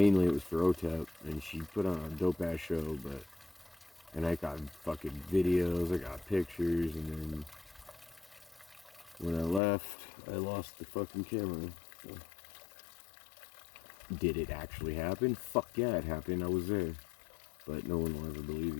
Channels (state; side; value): drops out; right; at 9.6 s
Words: it was for OTEP, and she put on a dope ass show, but. And I got fucking videos, I got pictures, and then when I left, I lost the fucking camera. So. Did it actually happen? Fuck yeah, it happened, I was there. But no one will ever believe